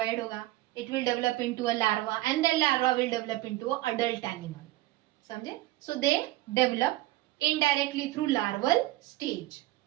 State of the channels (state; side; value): quieter; left; 17.6 dB